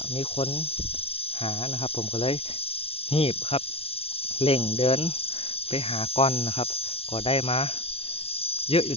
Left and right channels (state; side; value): late; right; 0.28 ms